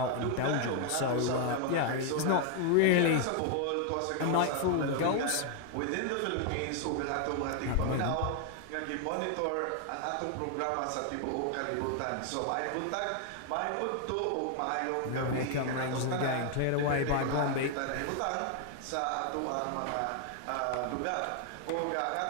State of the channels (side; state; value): both; different; correlation 0.00